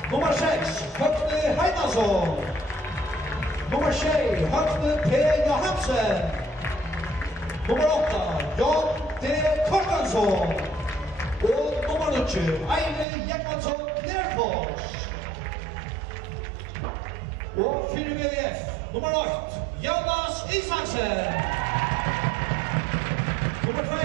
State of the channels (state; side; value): drops out; left; at 13.1 s